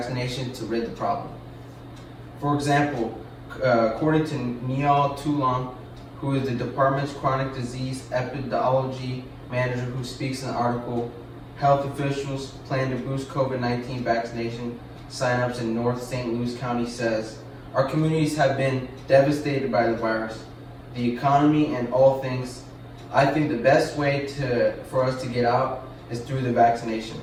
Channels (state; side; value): identical; both; correlation 1.00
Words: to rid the problem. For example, according to Neil Toulon, who is the department's chronic disease epidemiology manager who speaks in the article, health officials plan to boost COVID-19 vaccination signups in North St. Louis County, says, "Our communities have been devastated by the virus, the economy, and all things. I think the best way for us to get out is through the vaccination."